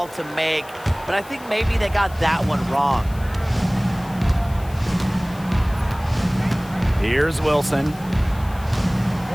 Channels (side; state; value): left; noise; hiss, 22 dB below the sound